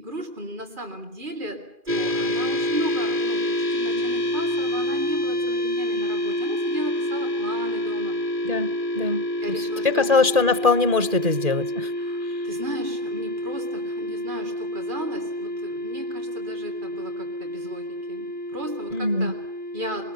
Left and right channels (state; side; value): late; left; 2.4 ms